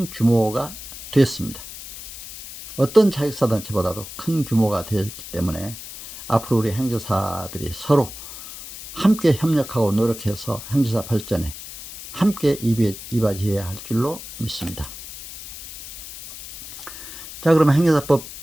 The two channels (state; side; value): noise; left; hiss, 13 dB below the sound